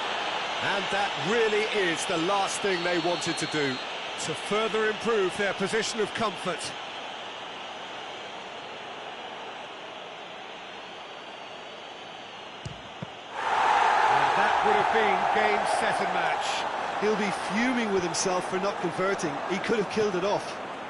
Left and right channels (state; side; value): identical; both; correlation 1.00